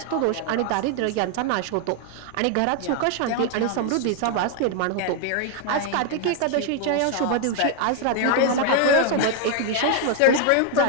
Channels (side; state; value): both; different; correlation 0.00